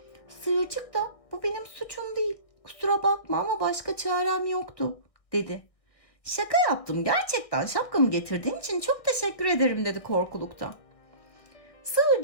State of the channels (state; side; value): late; right; 1.6 ms